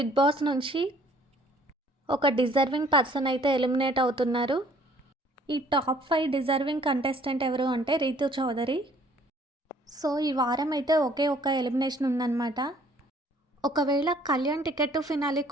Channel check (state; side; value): normal; both; correlation 0.58